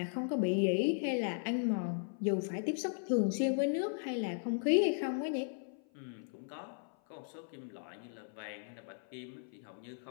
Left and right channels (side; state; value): right; silent; 53 dB below the other